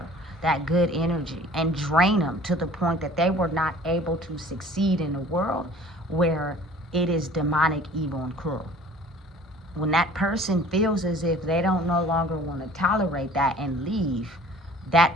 that good energy and drain them to the point that they were not able to succeed in a world where it is demonic, evil, and cruel. When that person feels as if they don't no longer want to tolerate that and leave,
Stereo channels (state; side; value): normal; both; correlation 0.50